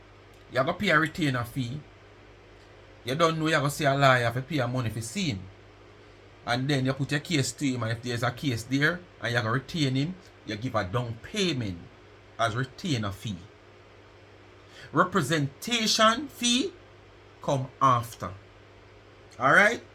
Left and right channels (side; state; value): both; identical; correlation 1.00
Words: You have to pay a retainer fee. You don't know you have to see a lawyer, you have to pay a money for see him. And then you put your case to him, and if there's a case there and you have to retain him, you give a down payment as retainer fee. Representation fee come after. Alright?